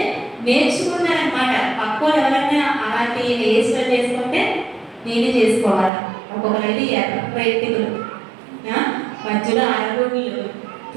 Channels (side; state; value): left; drops out; at 5.9 s